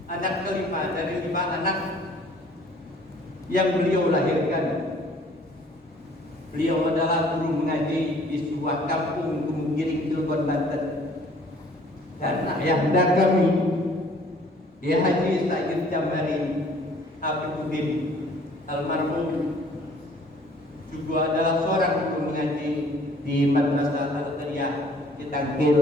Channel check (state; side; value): normal; both; correlation 0.56